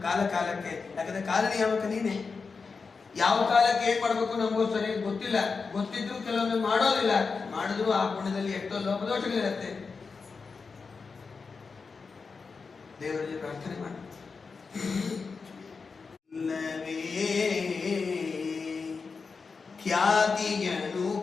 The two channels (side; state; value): right; quieter; 4.8 dB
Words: ಕಾಲ ಕಾಲಕ್ಕೆ. ಯಾಕಂದ್ರೆ ಕಾಲ ನಿಯಾಮಕ ನೀನೆ. ಯಾವ ಕಾಲಕ್ಕೆ ಏನ್ ಮಾಡ್ಬೇಕು ನಮಗೂ ಸರಿಯಾಗಿ ಗೊತ್ತಿಲ್ಲ. ಗೊತ್ತಿದ್ರು ಕೆಲವೊಮ್ಮೆ ಮಾಡೋದಿಲ್ಲ, ಮಾಡಿದ್ರು ಆ ಪುಣ್ಯದಲ್ಲಿ ಎಷ್ಟೋ ಲೋಪದೋಷಗಳಿರುತ್ತೆ. ದೇವರಲ್ಲಿ ಪ್ರಾರ್ಥನೆ ಮಾಡಿ. ಖ್ಯಾತಿಯನು